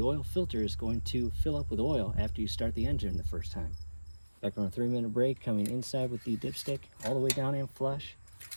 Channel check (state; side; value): inverted; both; correlation -1.00